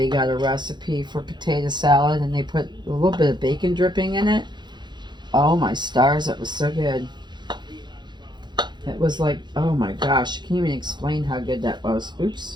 got a recipe for potato salad and they put a little bit of bacon dripping in it. Oh my stars, that was so good. It was like, oh my gosh, I can't even explain how good that was.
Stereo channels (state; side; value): late; left; 0.21 ms